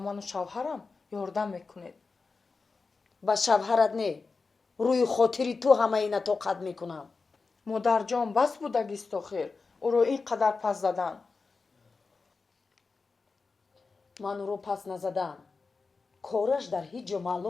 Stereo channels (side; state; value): right; quieter; 4.3 dB